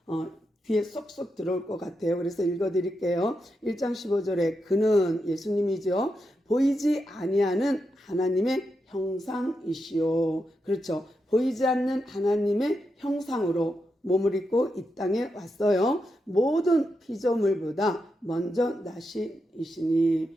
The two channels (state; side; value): normal; both; correlation 0.85